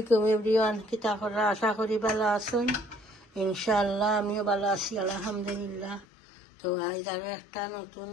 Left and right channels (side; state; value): right; drops out; at 6.1 s